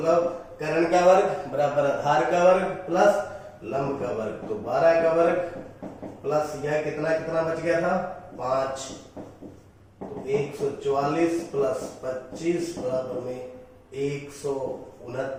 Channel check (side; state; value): both; identical; correlation 1.00